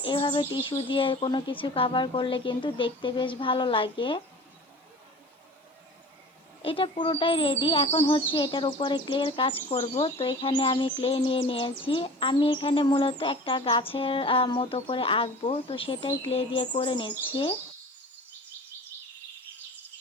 এভাবে টিস্যু দিয়ে কোনো কিছু কভার করলে কিন্তু দেখতে বেশ ভালো লাগে। এটা পুরোটাই রেডি। এখন হচ্ছে এটার উপরে ক্লের কাজ করব। তো এখানে আমি ক্লে নিয়ে নিয়েছি। আমি এখানে মূলত একটা গাছের মতো করে আঁকবো, তো সেটাই ক্লে দিয়ে করে নিচ্ছি।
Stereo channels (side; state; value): both; normal; correlation 0.40